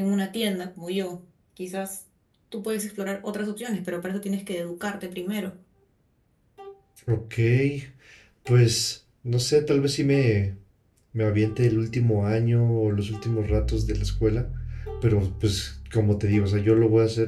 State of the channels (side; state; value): both; identical; correlation 1.00